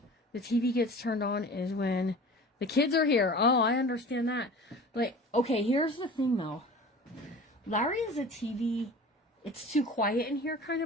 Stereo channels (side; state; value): both; normal; correlation 0.39